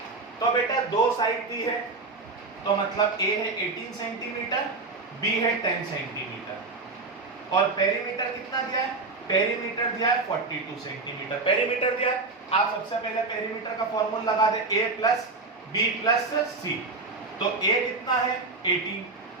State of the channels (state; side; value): quieter; left; 3.7 dB